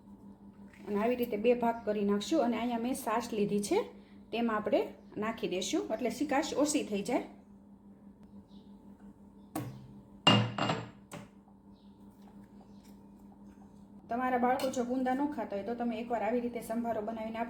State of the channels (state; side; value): identical; both; correlation 1.00